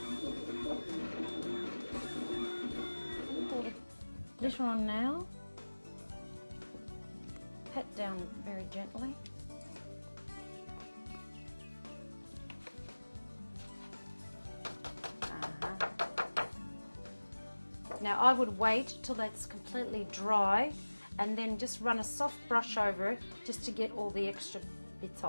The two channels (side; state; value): both; inverted; correlation -1.00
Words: Glitter on now. Pat down very gently. Now I would wait till that's completely dry and then just run a soft brush over it just to get all the extra bits